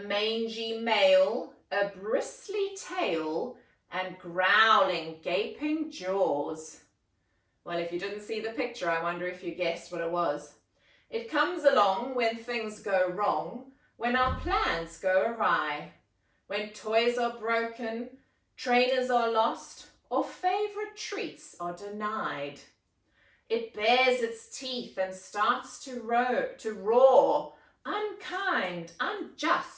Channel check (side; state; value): both; identical; correlation 1.00